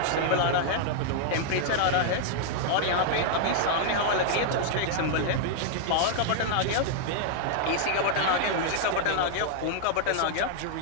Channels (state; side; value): different; both; correlation 0.00